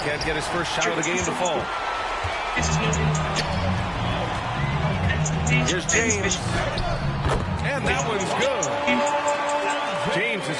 Can't get his first shot of the game to fall. Here's James. And that one's good. James has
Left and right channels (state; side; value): identical; both; correlation 1.00